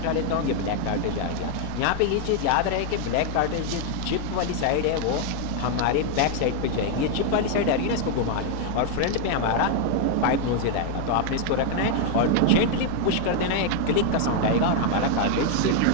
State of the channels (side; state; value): both; different; correlation 0.01